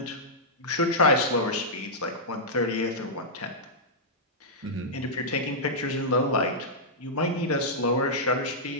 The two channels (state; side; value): normal; both; correlation -0.11